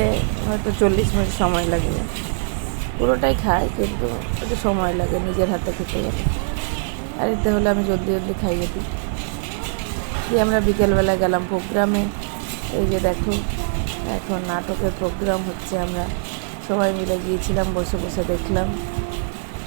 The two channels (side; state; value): left; silent; digital silence